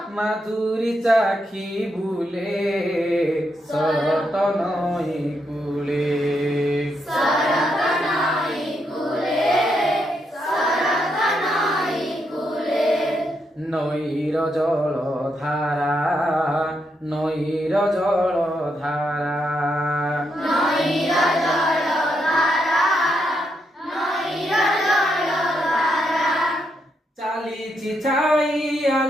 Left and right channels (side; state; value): both; normal; correlation 0.80